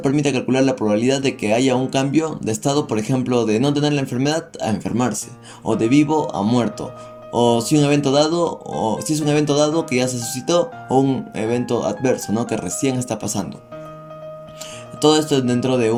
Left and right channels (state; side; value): identical; both; correlation 1.00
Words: permite calcular la probabilidad de que haya un cambio de estado, por ejemplo, de no tener la enfermedad a enfermarse, o de vivo a muerto, o si es un evento dado que ya se suscitó, o un evento adverso, ¿no?, que recién está pasando. Todo esto es dentro de